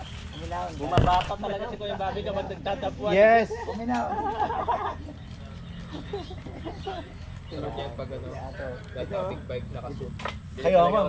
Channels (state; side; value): identical; both; correlation 1.00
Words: Kuminawan. Bumabata talaga si Kuya Bobby kapag nagtatapuan. Yes! Kuminawan. Kaya nga,